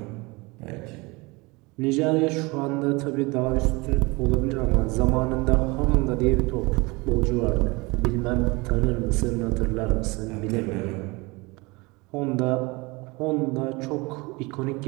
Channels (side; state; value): left; quieter; 25.0 dB